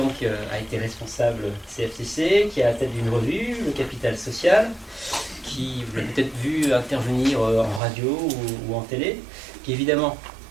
a été responsable CFCC, qui est à la tête d'une revue, Le Capital Social, qui vous l'avez peut-être vu intervenir en radio ou en télé, qui est évidemment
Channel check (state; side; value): drops out; left; at 7.8 s